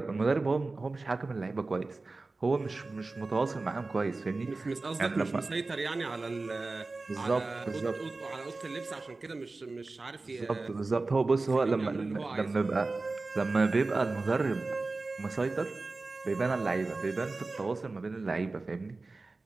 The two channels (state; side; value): quieter; left; 3.5 dB